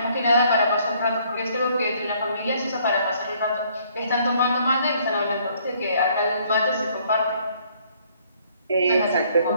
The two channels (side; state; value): both; inverted; correlation -0.64